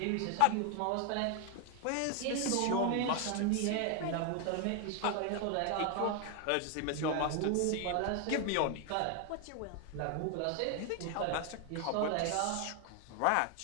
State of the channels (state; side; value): different; both; correlation 0.01